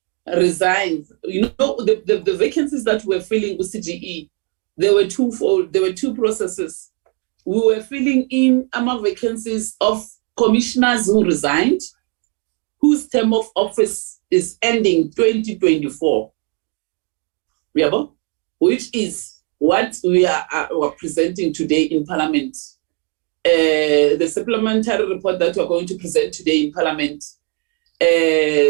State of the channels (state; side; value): quieter; left; 33.7 dB